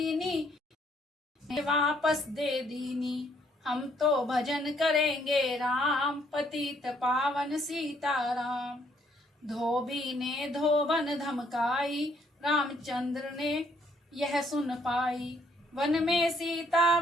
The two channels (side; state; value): both; normal; correlation 0.67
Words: वापस दे दीनी। हम तो भजन करेंगे राम, पतित पावन सीताराम। धोबी ने धोबन धमकाई, रामचंद्र ने यह सुन पाई। वन में सीता